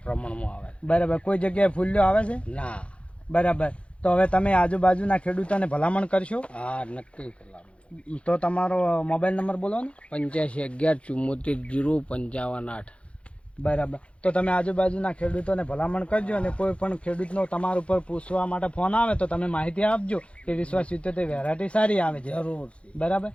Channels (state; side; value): late; right; 0.061 ms